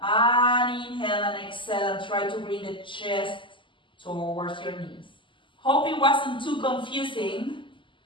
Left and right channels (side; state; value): right; late; 0.24 ms